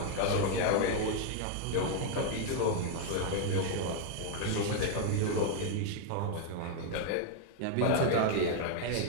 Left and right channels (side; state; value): both; different; correlation 0.00